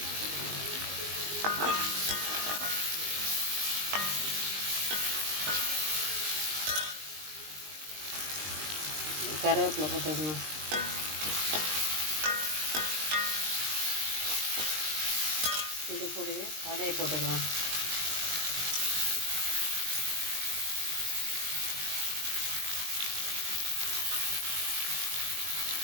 கருவேப்பிலை போட்டுக்கணும். இது கூடவே காடையை போட்டுக்கலாம்.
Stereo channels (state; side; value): late; left; 20 ms